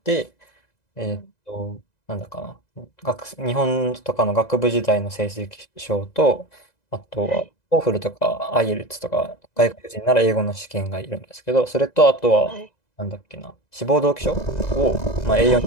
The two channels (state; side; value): late; right; 2.0 ms